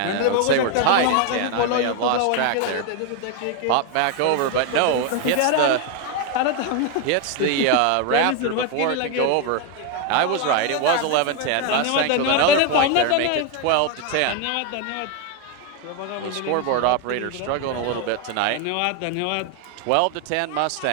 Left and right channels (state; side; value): different; both; correlation 0.01